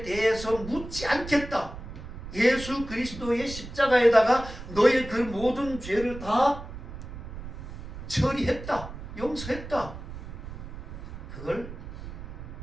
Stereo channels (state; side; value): noise; right; rumble, 11 dB below the sound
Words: 대해서 묻지 않겠다. 예수 그리스도의 십자가에다가 너의 그 모든 죄를 다 처리했다. 용서했다. 그걸